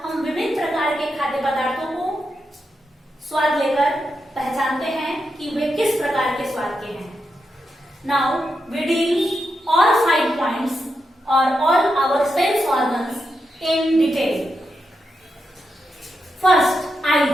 हम विभिन्न प्रकार के खाद्य पदार्थों को स्वाद लेकर पहचानते हैं कि वे किस प्रकार के स्वाद के हैं। Now we deal all 5 points और all our sense organs in detail. First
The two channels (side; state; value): both; normal; correlation 0.86